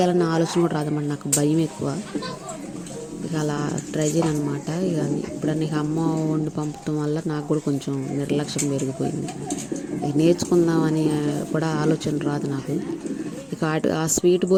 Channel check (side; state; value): both; identical; correlation 1.00